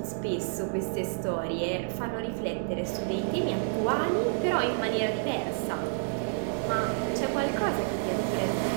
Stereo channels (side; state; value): left; silent; digital silence